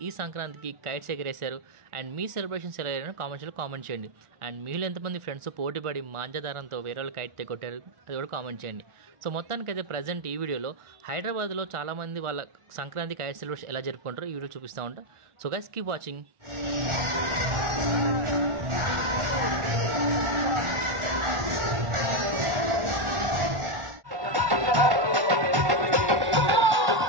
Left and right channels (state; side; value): late; left; 1.4 ms